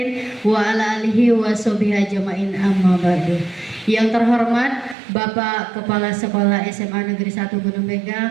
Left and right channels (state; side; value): drops out; left; at 5.0 s